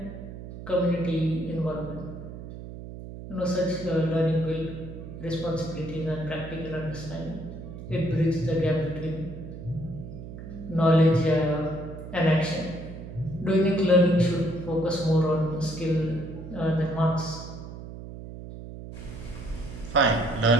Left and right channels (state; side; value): noise; right; hum, 11 dB below the sound